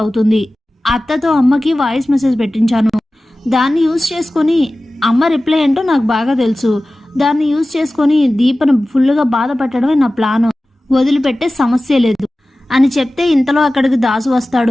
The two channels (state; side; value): normal; both; correlation 0.96